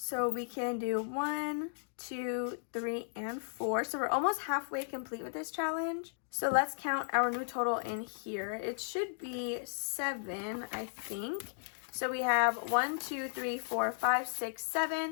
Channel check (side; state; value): right; silent; digital silence